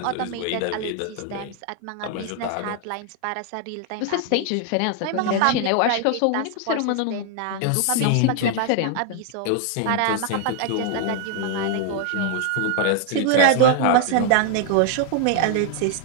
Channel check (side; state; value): both; different; correlation 0.00